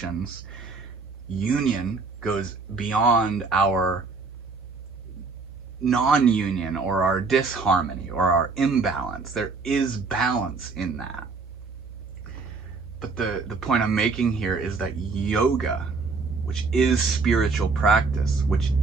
union goes beyond our non-union or our disharmony or our imbalance. There is balance in that. But the point I'm making here is that yoga, which is spiritual practice, which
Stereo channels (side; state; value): left; quieter; 4.3 dB